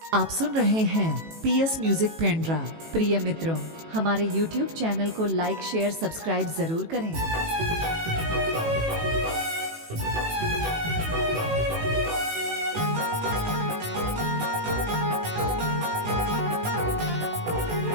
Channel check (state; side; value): late; left; 18 ms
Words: आप सुन रहे हैं पीएस म्यूजिक पेंड्रा। प्रिय मित्रों, हमारे YouTube चैनल को लाइक शेयर सब्सक्राइब जरूर करें।